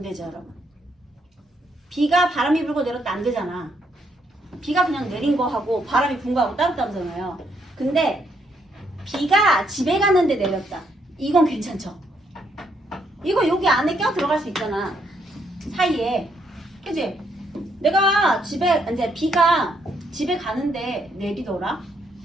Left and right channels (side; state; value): both; normal; correlation 0.74